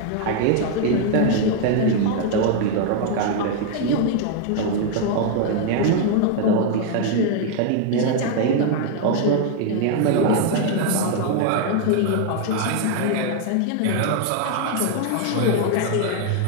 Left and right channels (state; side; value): different; both; correlation 0.00